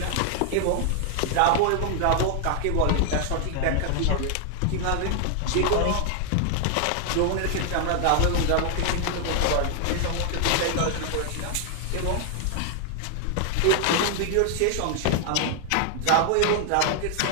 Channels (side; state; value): both; different; correlation 0.00